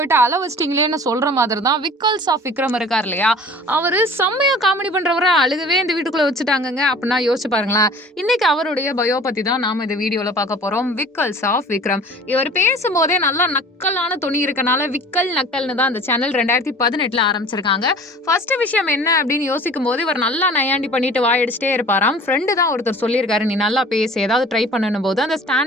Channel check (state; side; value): normal; both; correlation 0.45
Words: அள வச்சிட்டீங்களேன்னு சொல்ற மாதிரி தான் விக்கல்ஸ் ஆஃப் விக்ரம் இருக்கார் இல்லையா? அவரு செம்மையா காமெடி பண்றவர அழுகவே இந்த வீட்டுக்குள்ள வச்சுட்டாங்கங்க. அப்படின்னா யோசிச்சு பாருங்களேன். இன்னைக்கு அவருடைய பயோ பத்தி தான் நாம இந்த வீடியோல பார்க்க போறோம். விக்கல்ஸ் ஆஃப் விக்ரம். இவர் பேசும்போதே நல்லா நக்கலான தொனி இருக்கனால விக்கல் நக்கல்னு தான் அந்த சேனல் 2018ல ஆரம்பிச்சிருக்காங்க. ஃபர்ஸ்ட் விஷயம் என்ன அப்படின்னு யோசிக்கும் போது இவர் நல்லா நையாண்டி பண்ணிட்டு வாயடிச்சிட்டே இருப்பாராம். ஃப்ரெண்டு தான் ஒருத்தர் சொல்லியிருக்காரு, நீ நல்லா பேசு ஏதாவது ட்ரை பண்ணணும் போது அந்த ஸ்டாண்ட்